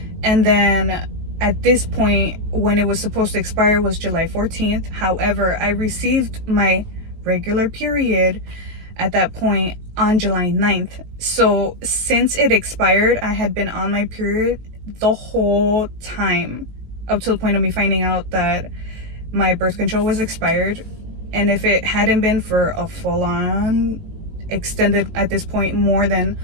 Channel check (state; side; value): late; left; 19 ms